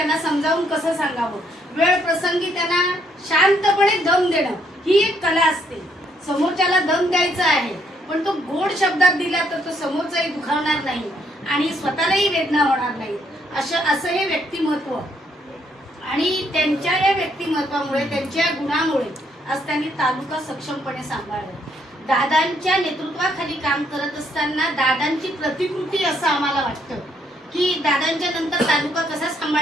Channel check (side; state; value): both; normal; correlation 0.71